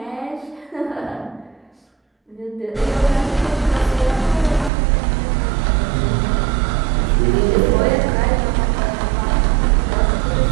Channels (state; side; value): drops out; left; at 4.7 s